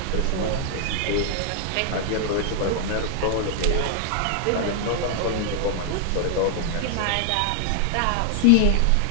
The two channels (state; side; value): different; both; correlation 0.00